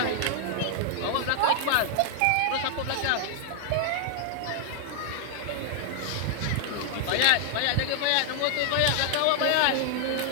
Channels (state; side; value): different; both; correlation 0.00